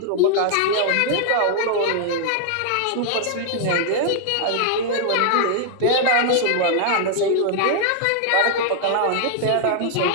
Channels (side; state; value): both; different; correlation 0.00